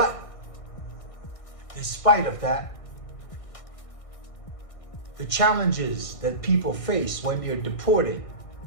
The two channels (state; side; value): late; right; 1.6 ms